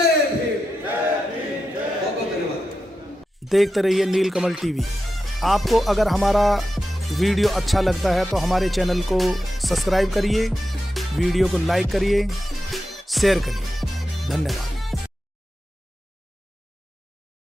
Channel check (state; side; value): normal; both; correlation 0.90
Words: भीम। बहुत बहुत धन्यवाद। देखते रहिए नीलकमल टीवी। आपको अगर हमारा वीडियो अच्छा लगता है तो हमारे चैनल को सब्सक्राइब करिए, वीडियो को लाइक करिए, शेयर करिए। धन्यवाद।